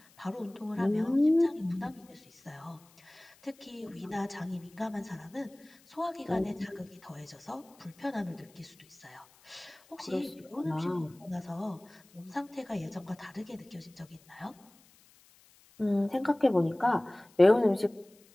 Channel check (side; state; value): left; noise; hiss, 28 dB below the sound